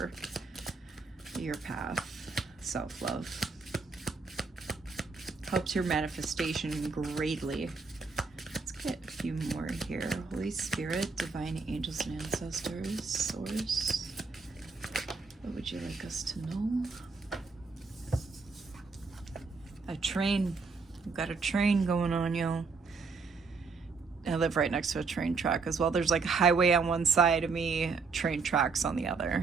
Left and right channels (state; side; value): quieter; left; 4.6 dB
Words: path. Self-love helps your manifestation greatly. Let's get a few more here. Holy Spirit, divine angels and ancestors, source. What would you like us to know? A train. We've got a train going on, y'all. I live right next to a train track as well. There's like a highway on one side of me, train tracks on the